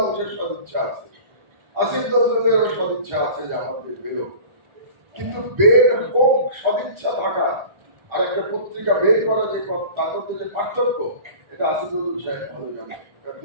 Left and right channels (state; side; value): late; left; 1.4 ms